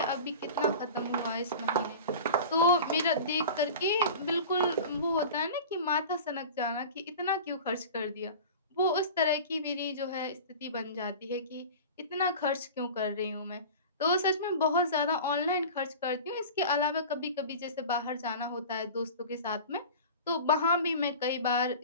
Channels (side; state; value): both; inverted; correlation -0.35